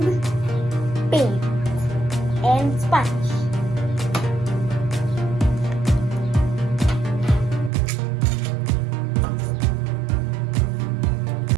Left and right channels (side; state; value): left; drops out; at 7.7 s